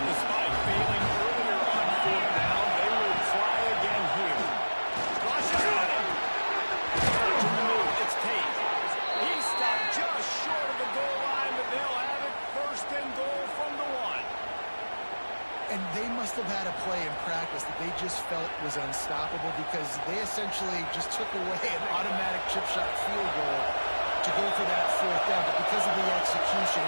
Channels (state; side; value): inverted; both; correlation -1.00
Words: Despite failing earlier on fourth down, they will try again here. Rush is on him. Watching the move. It's Tate. He stopped just short of the goal line, but they'll have it first and goal from the one. And they must have had a play in practice that they just felt was unstoppable because they essentially just took away an automatic chip shot field goal to go for that fourth down. But because of the execution,